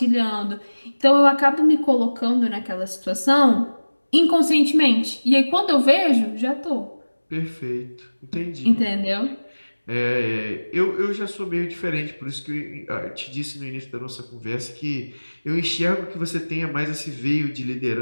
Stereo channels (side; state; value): both; inverted; correlation -1.00